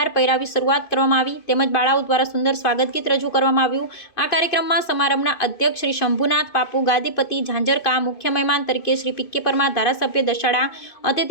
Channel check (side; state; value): right; late; 2.5 ms